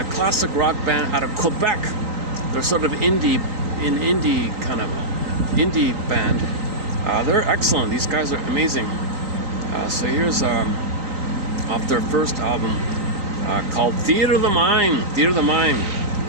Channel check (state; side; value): late; left; 3.9 ms